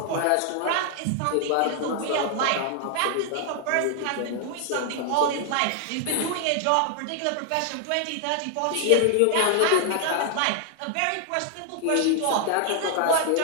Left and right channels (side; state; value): both; different; correlation 0.00